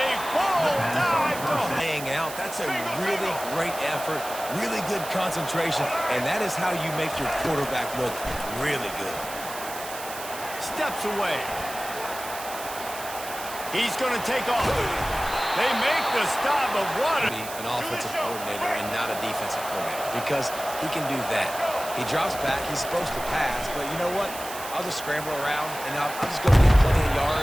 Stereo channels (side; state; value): right; noise; hiss, 11 dB below the sound